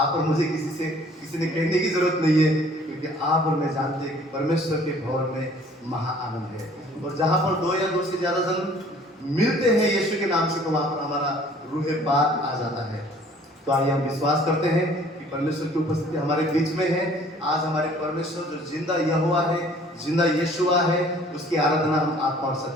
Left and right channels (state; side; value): normal; both; correlation 0.54